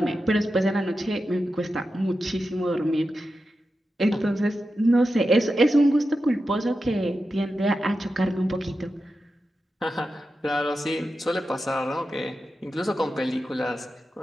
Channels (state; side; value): normal; both; correlation 0.90